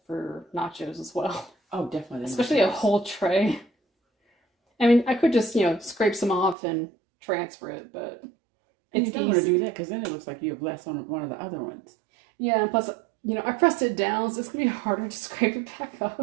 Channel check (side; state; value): left; drops out; at 6.6 s